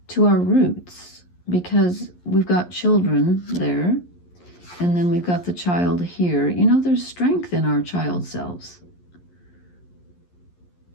to our roots, because we've got children there, and then we've got the child here. You know, there's strength in our child selves.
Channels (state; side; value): late; right; 11 ms